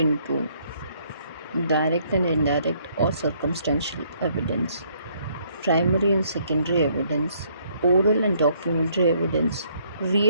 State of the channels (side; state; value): both; inverted; correlation -0.67